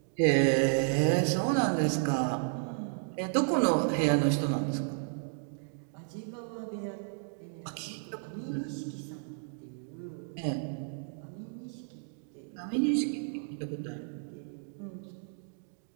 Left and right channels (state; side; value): silent; left; digital silence